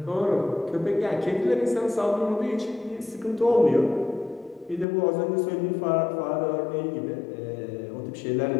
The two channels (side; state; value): right; drops out; at 4.9 s